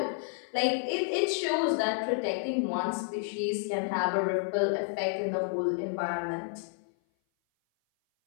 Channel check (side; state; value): right; silent; 56 dB below the other